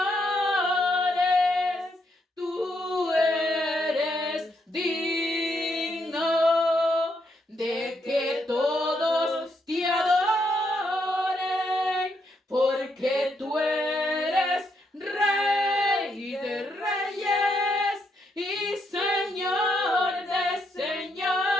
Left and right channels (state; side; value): normal; both; correlation 0.78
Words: Tú eres digno de que todos te adoren, porque tú eres Rey de reyes y Señor de